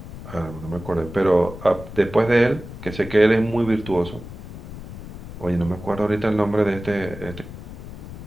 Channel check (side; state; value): left; noise; rumble, 12 dB below the sound